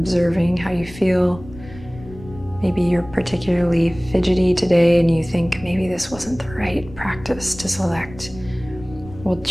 how you feel. Maybe you're particularly fidgety today and you think maybe this wasn't the right practice to select. We'll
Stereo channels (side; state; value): left; noise; rumble, 17 dB below the sound